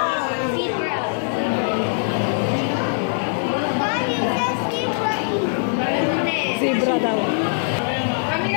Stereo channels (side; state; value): right; silent; digital silence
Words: Zebra. Zebra daw. Kami